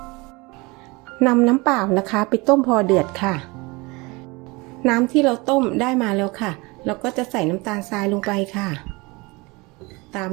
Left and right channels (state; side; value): quieter; left; 25.2 dB